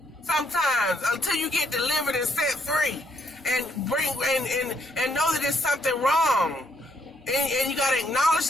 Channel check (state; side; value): normal; both; correlation 0.73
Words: Sometimes. Until you get delivered and set free. And bring and know that there's something wrong. And you got to acknowledge